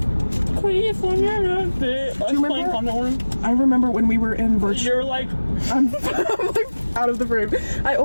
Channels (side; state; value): both; inverted; correlation -1.00